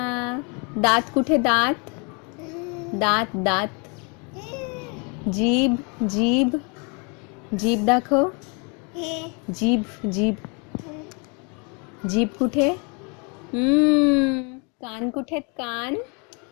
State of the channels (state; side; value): quieter; right; 33.7 dB